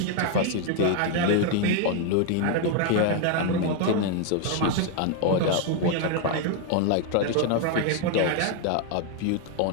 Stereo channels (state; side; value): different; both; correlation 0.01